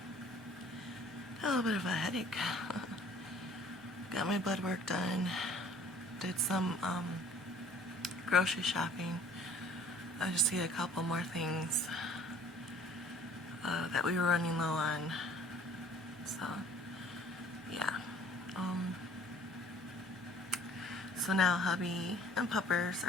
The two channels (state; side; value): normal; both; correlation 0.52